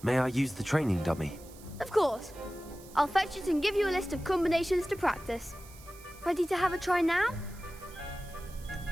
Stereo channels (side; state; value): right; noise; hiss, 21 dB below the sound